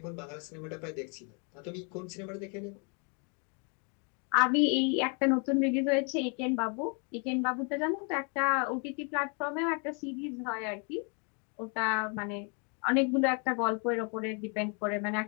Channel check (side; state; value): right; quieter; 36.7 dB